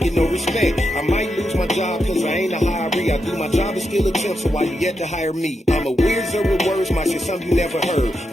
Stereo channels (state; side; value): normal; both; correlation 0.85